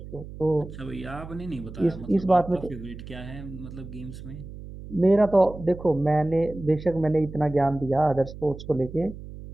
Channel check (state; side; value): noise; right; hum, 13 dB below the sound